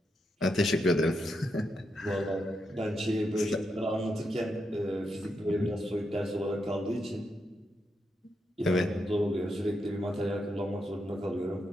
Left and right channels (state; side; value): normal; both; correlation 0.83